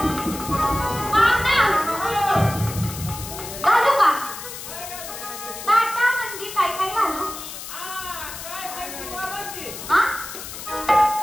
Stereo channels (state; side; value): noise; left; hiss, 10 dB below the sound